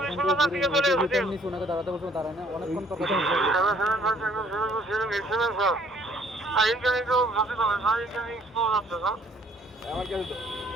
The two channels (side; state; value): both; normal; correlation 0.60